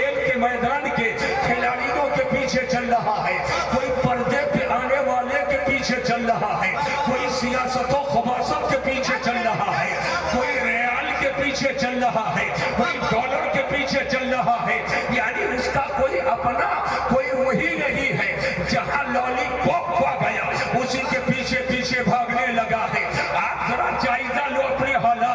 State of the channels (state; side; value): identical; both; correlation 1.00